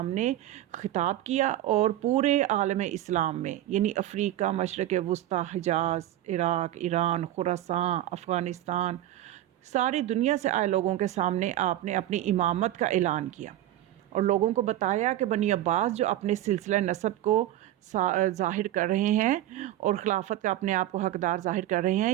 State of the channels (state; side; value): quieter; left; 13.4 dB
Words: خطاب کیا، اور پورے عالم اسلام میں یعنی افریقہ، مشرق وسطیٰ، حجاز، عراق، ایران، خراسان، افغانستان، ساری دنیا سے آئے لوگوں کے سامنے آپ نے اپنی امامت کا اعلان کیا، اور لوگوں کو بتایا کہ بنی عباس جو اپنے سلسلہ نسب کو ظاہر کر رہے ہیں اور خلافت کا اپنے آپ کو حقدار ظاہر کر رہے